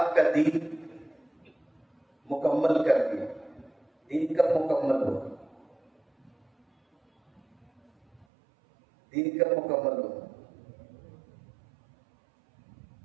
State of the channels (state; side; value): drops out; left; at 8.2 s